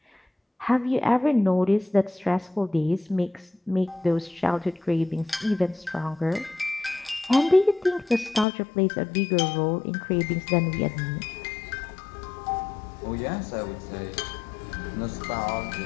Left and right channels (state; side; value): drops out; right; at 8.5 s